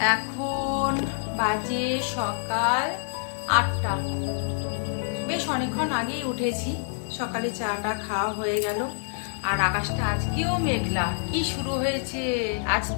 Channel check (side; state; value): right; silent; digital silence